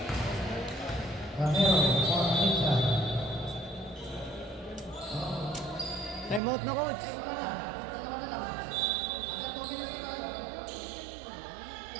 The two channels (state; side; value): drops out; left; at 6.4 s